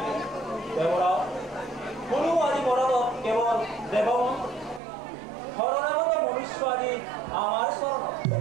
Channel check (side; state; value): left; drops out; at 4.8 s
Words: দেৱৰা কোনো আদি মনত কেৱল দেৱ শৰণাগত মনুষ্য আদি আমাৰ চৰণত